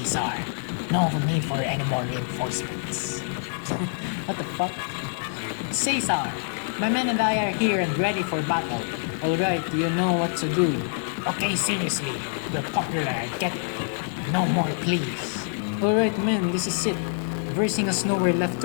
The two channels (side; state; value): right; silent; digital silence